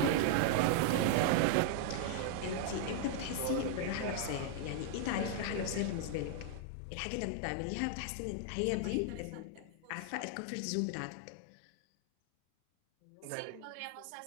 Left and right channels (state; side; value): different; both; correlation -0.01